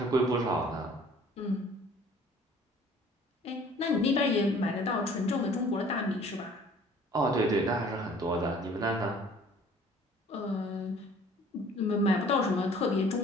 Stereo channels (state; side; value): normal; both; correlation 0.52